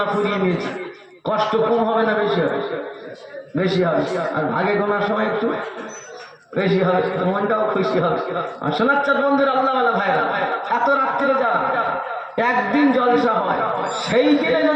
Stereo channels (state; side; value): identical; both; correlation 1.00